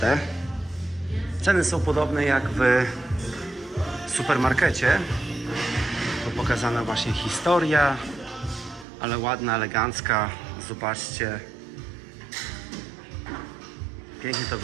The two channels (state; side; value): drops out; left; at 8.8 s